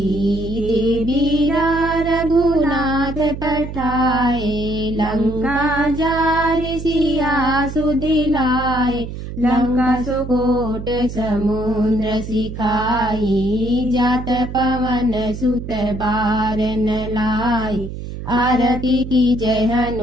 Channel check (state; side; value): noise; right; hum, 9 dB below the sound